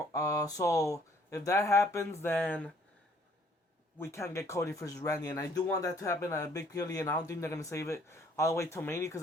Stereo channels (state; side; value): normal; both; correlation 0.62